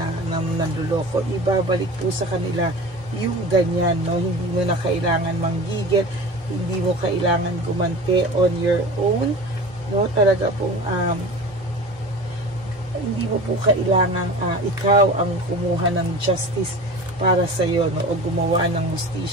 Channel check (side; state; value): both; normal; correlation 0.36